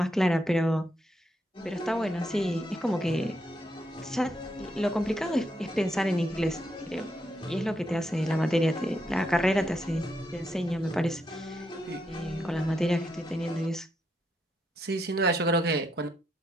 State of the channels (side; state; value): both; normal; correlation 0.80